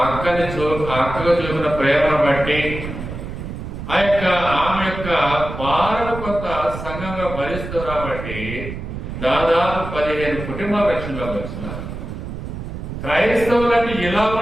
అక్కగా చూపిన ప్రేమను బట్టి ఆమె యొక్క భారత కొంత సంఘంగా భరిస్తూ కాబట్టి దాదాపు 15 కుటుంబాల రక్షణలోకి వచ్చినారు. క్రైస్తవులని ఇలా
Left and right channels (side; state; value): right; noise; rumble, 8 dB below the sound